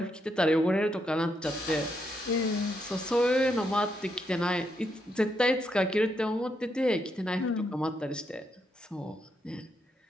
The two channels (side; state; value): both; normal; correlation 0.79